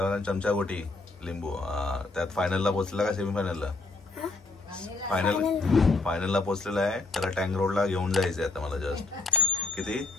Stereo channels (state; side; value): quieter; right; 3.4 dB